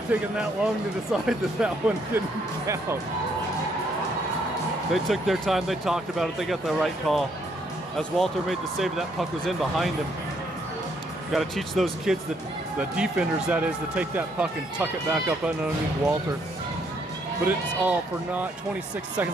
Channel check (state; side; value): normal; both; correlation 0.70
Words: taken that long to decide that one didn't count. They took their time. They talked about it. They got the right call. As Walter made the save, that puck was in behind him. Got to teach those kids, the defenders that is, to take that puck and tuck it back up underneath Walter. But it's all for naught. 26